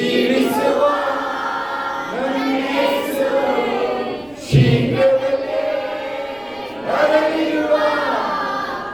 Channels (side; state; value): right; noise; rumble, 27 dB below the sound